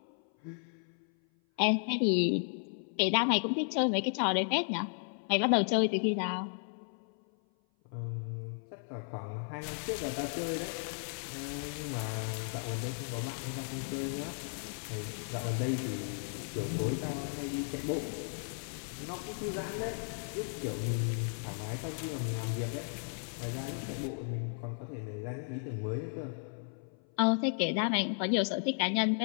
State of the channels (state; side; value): silent; right; 55 dB below the other